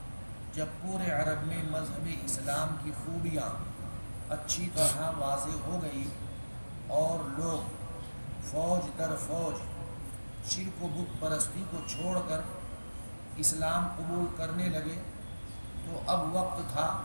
جب پورے عرب میں مذہب اسلام کی خوبیاں اچھی طرح واضح ہو گئی اور لوگ فوج در فوج شرک و بت پرستی کو چھوڑ کر اسلام قبول کرنے لگے، تو اب وقت تھا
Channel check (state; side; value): inverted; both; correlation -1.00